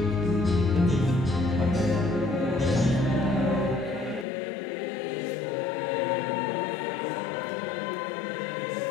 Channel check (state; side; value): drops out; right; at 4.2 s